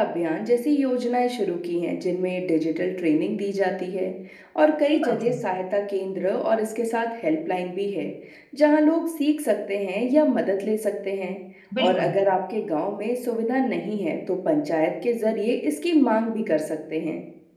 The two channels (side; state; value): both; identical; correlation 1.00